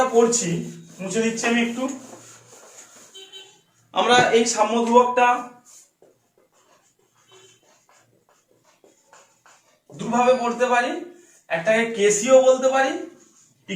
পড়ছি, মুছে দিচ্ছি আমি একটু, আমরা এই সাম্য ধ্রুবকটা দুভাবে পড়তে পারি, একটাকে কেসিও বলতে পারি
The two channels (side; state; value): both; identical; correlation 1.00